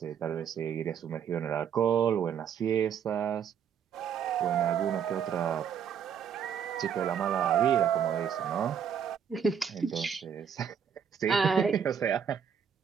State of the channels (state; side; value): quieter; left; 7.9 dB